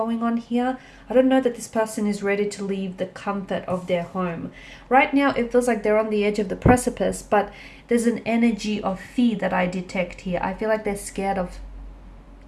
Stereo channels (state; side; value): identical; both; correlation 1.00